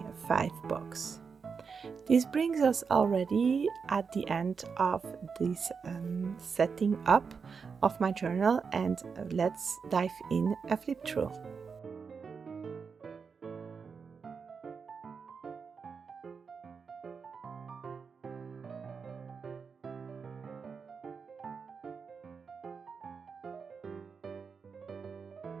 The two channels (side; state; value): left; quieter; 5.6 dB